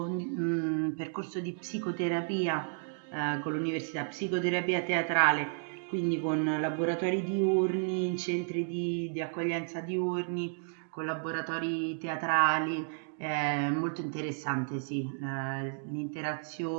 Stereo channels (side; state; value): left; silent; digital silence